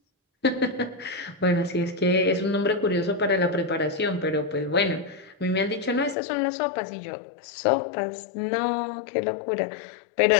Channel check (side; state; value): right; drops out; at 6.2 s